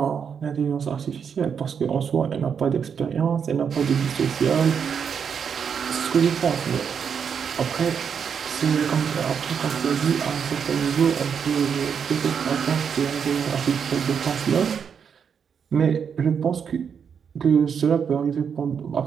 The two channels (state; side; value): quieter; left; 7.0 dB